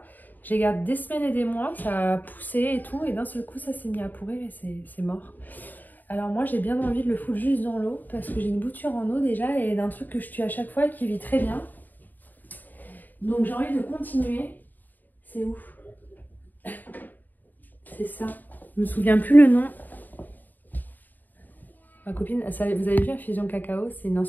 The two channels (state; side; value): late; right; 0.087 ms